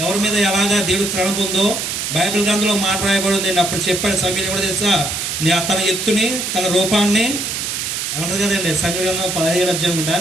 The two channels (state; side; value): noise; right; hiss, 3 dB below the sound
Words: ఎవరి మీద ఎలాగా దేవుడు తణుకు ఉందో బైబిల్ గ్రంథంలో మాట రాయబడి ఉందండి. అప్పుడు చెప్పాడు సమీర్ కూడా తెలుసా, తన ఎత్తుని, తన రూపాన్ని ఏమంటది కదండి సమీర గ్రంథం 17 అధ్యాయం అనుకుంటా.